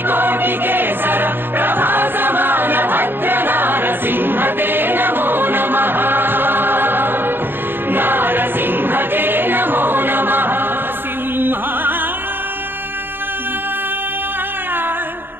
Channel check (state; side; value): late; left; 0.10 ms